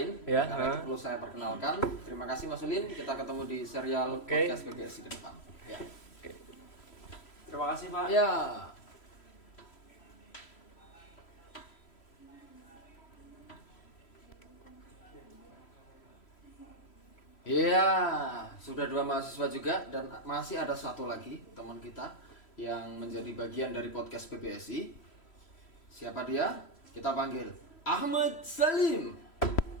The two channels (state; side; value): late; right; 3.1 ms